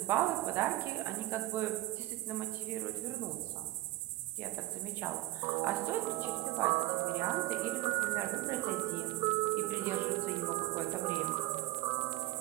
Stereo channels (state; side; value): quieter; left; 18.0 dB